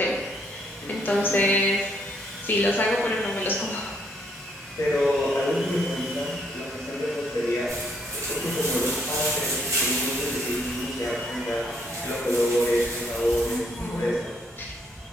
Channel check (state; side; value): normal; both; correlation 0.71